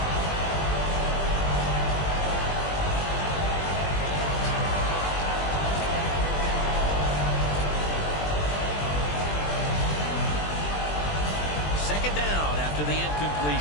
Second down after the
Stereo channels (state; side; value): late; right; 20 ms